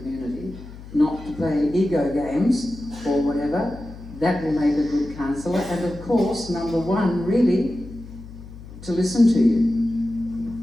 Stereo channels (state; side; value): noise; left; hum, 15 dB below the sound